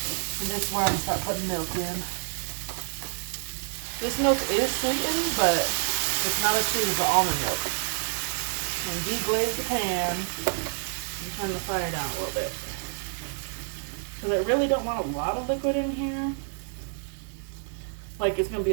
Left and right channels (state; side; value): silent; left; 59 dB below the other